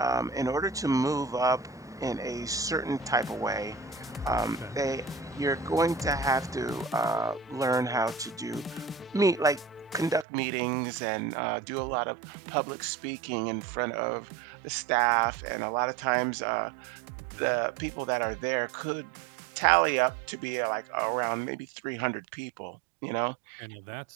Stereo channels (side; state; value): left; drops out; at 10.2 s